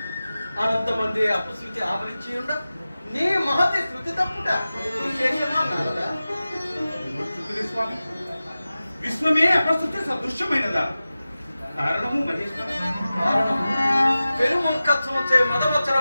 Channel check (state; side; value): inverted; both; correlation -0.95